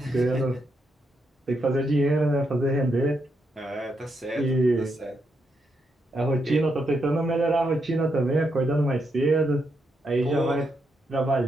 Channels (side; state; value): both; normal; correlation 0.81